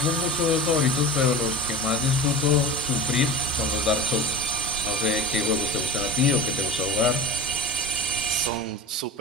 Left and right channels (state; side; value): normal; both; correlation 0.33